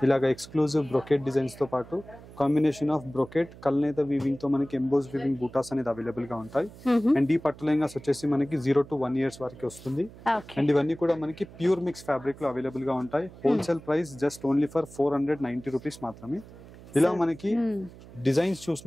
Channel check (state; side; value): noise; right; hum, 19 dB below the sound